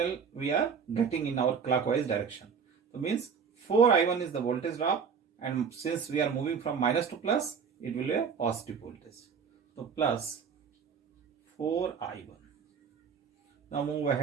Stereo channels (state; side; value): quieter; left; 6.4 dB